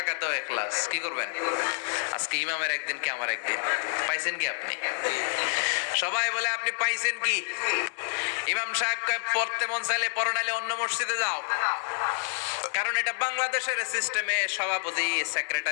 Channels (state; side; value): silent; right; digital silence